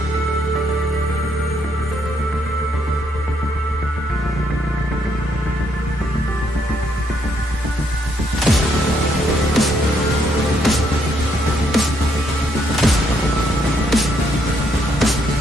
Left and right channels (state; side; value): normal; both; correlation 0.73